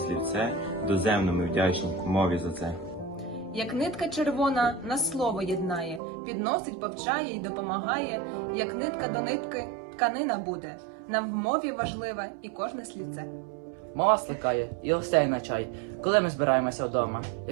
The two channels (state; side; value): drops out; left; at 6.0 s